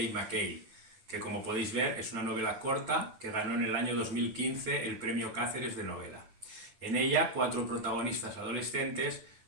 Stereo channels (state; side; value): late; left; 9.1 ms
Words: McKay, que como podéis ver es una novela corta que ganó en el año 2015 el premio Cáceres de novela. En ella, cuatro protagonistas adolescentes